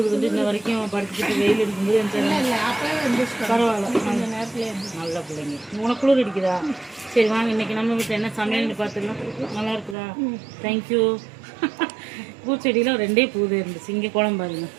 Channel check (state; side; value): drops out; left; at 10.0 s